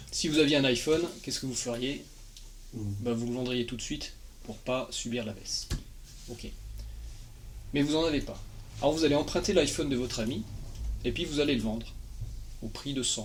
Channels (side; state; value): both; identical; correlation 1.00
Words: Si vous aviez un iPhone, qu'est-ce que vous feriez? Vous le vendriez tout de suite pour pas subir la baisse. Ok. Mais vous n'en avez pas. Alors vous allez emprunter l'iPhone de votre ami, et puis vous allez le vendre au prix de